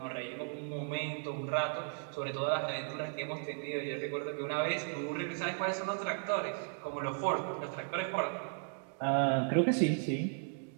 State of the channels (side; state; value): left; silent; 54 dB below the other